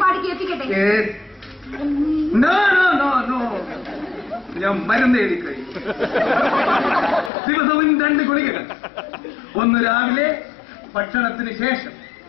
പാടി കേൾപ്പിക്കട്ടെ? ഞാൻ മരുന്ന് എഴുതി കഴിയും. ദിവസവും 2 ഗുളികകൾ. ഒന്ന് രാവിലെ ഭക്ഷണത്തിന് ശേഷം,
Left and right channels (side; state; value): right; drops out; at 7.3 s